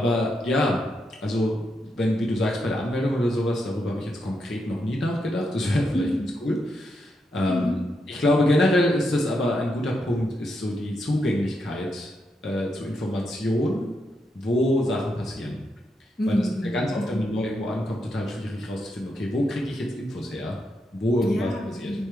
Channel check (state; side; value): normal; both; correlation 0.82